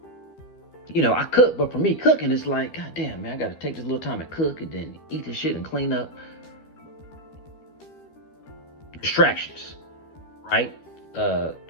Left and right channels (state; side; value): late; right; 13 ms